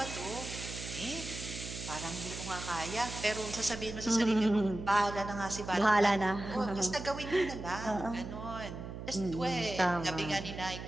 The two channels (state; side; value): noise; right; hum, 9 dB below the sound